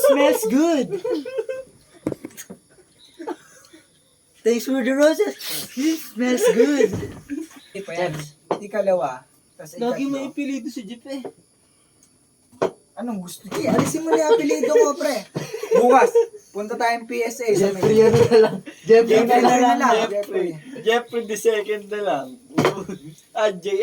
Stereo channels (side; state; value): both; identical; correlation 1.00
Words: smells good. Thanks for the roses. It smells good. Ikalawa. Tas Lagi mo ikatlo. ipilido si Jeep eh. Anong gusto? Sige, alisin mo na yung apelido mo, pre. Bukas, punta tayong PSA sa Jeffrey ano na lang. Jeffrey Jeffrey na lang. Jeffrey. Jeffrey the second na lang.